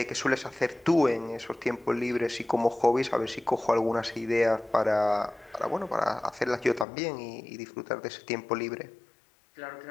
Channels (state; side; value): drops out; right; at 6.9 s